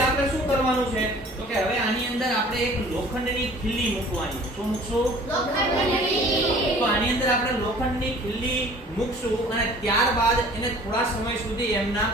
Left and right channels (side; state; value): both; normal; correlation 0.49